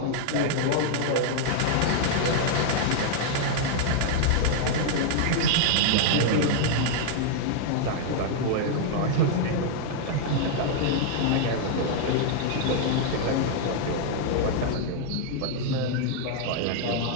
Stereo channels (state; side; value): different; both; correlation 0.00